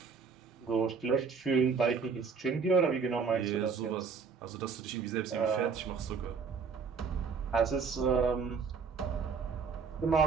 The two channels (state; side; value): quieter; left; 5.5 dB